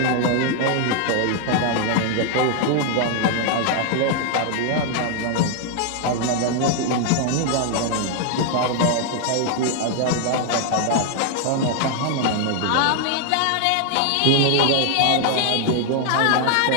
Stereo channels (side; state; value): both; different; correlation 0.00